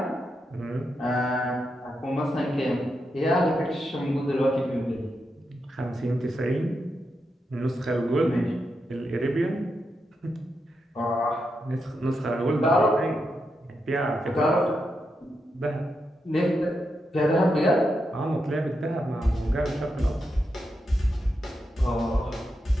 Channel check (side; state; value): both; normal; correlation 0.85